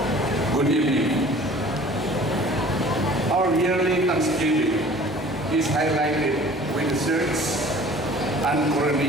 good evening. Our yearly Thanksgiving is highlighted with the search and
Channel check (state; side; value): normal; both; correlation 0.47